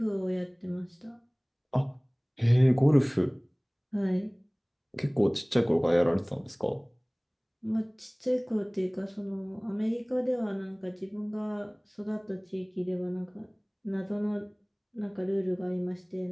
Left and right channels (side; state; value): both; identical; correlation 1.00